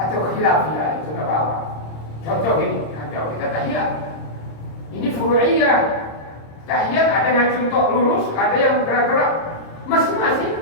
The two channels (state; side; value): late; right; 26 ms